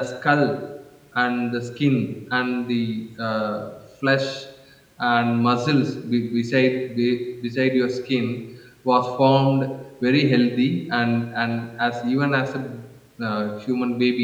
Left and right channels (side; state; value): both; identical; correlation 1.00